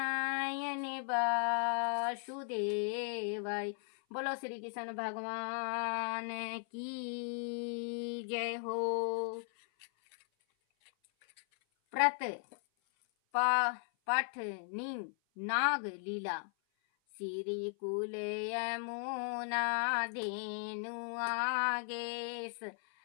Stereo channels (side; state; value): right; silent; 53 dB below the other